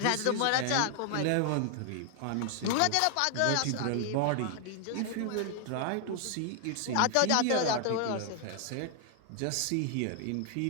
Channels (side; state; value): both; different; correlation 0.00